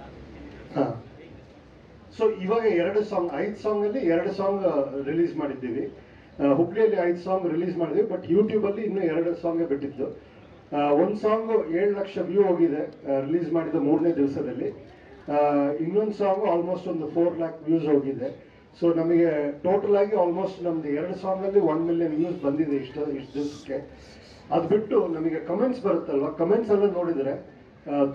ಹಾಂ, ಸೊ ಇವಾಗ 5 ಸಾಂಗ್ ಅಲ್ಲಿ 2 ಸಾಂಗ್ ರಿಲೀಸ್ ಮಾಡಿದ್ದೀವಿ. ಹುಬ್ಳಿಯಲ್ಲಿ 5 ಸಾಂಗ್ ರಿಲೀಸ್ ಮಾಡಿದ್ವಿ, ಬಟ್ ಯೂಟ್ಯೂಬ್ ಅಲ್ಲಿ ಇನ್ನೂ 2 ಸಾಂಗ್ ಬಿಟ್ಟಿದ್ದು. ಒಂದು ಸಾಂಗ್ 7 ಲಕ್ಷ ವ್ಯೂ ಹೋಗಿದೆ ರಿಲೀಸ್ ಮಾಡಿದ 3ನೇ ದಿವಸದಲ್ಲಿ. ಇನ್ನೊಂದು ಸಾಂಗ್ ಆಲ್ಮೋಸ್ಟ್ ಒಂದು 4 ಲ್ಯಾಕ್ ವ್ಯೂಸ್ ಹೋಗಿದೆ. ಸೊ ನಮಗೆ ಟೋಟಲ್ ಆಗಿ ಆಲ್ಮೋಸ್ಟ್ ನಮ್ದು 2 ಸಾಂಗ್ ಅಲ್ಲಿ 1 ಮಿಲಿಯನ್ ವ್ಯೂಸ್ ಬಂದಿದೆ ಇಷ್ಟು ದಿವಸಕ್ಕೆ. ಅದು ಬಿಟ್ಟು ನಮಗೆ ಕಮೆಂಟ್ಸ್ ಬರುತ್ತಲ್ವ, ಕಮೆಂಟ್ಸ್ ಎಲ್ಲ ನೋಡಿದ್ರೆ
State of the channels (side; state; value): both; identical; correlation 1.00